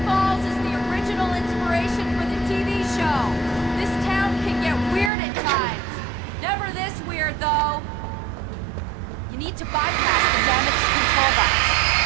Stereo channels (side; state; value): left; drops out; at 5.1 s